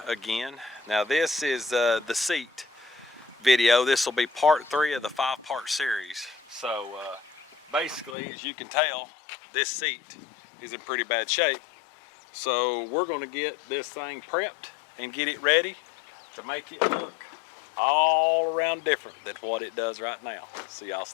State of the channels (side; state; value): right; drops out; at 8.2 s